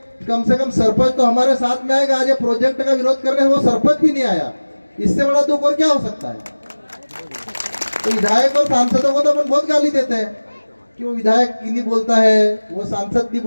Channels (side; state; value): both; inverted; correlation -1.00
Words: कम से कम सरपंच तो हमारे साथ में आएगा, आज ये प्रोजेक्ट का विरोध करने वो सरपंच भी नहीं आया, इससे बड़ा दुख और क्या हो सकता है? तो विधायक और सांसदों को तो अपन बहुत गाली देते हैं कि वो विधायक नहीं बोलता है, वो सांसद नहीं